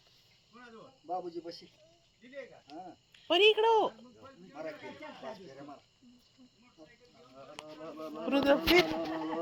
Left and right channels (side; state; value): both; identical; correlation 1.00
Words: कुणाजवळ बाबूजी बशी दिली का हा परी इकडं हो. मारा की पाच फेऱ्या मार. रुद्रपीठ